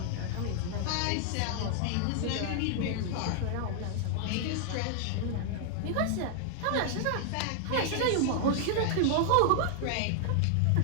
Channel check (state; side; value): different; both; correlation 0.00